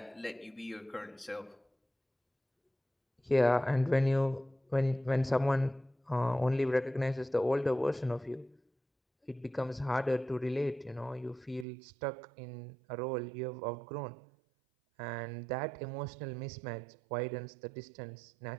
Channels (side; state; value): left; drops out; at 11.7 s